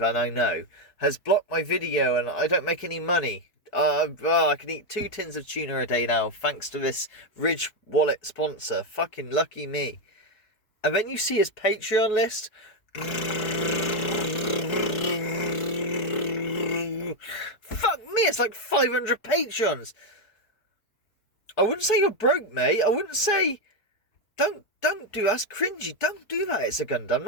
and I know, has blocked my video and I don't make any money. I can eat 2 tins of tuna a day now thanks to this Ridge Wallet sponsor. Fucking lucky me. And then you see his Patreon list. Fuck me, it's like 500 patrons. I wouldn't say you're broke, mate. I wouldn't say... Don't do that. That's cringy. Don't do that. It's a Gundam.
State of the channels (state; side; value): late; right; 4.7 ms